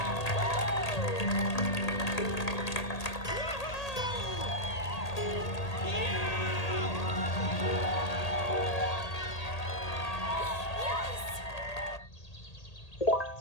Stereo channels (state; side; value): late; right; 1.8 ms